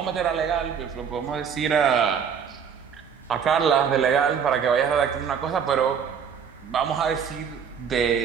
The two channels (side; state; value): left; quieter; 7.2 dB